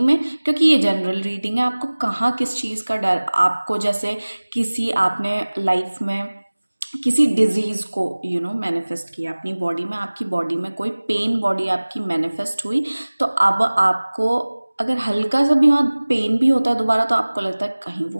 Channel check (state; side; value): inverted; both; correlation -1.00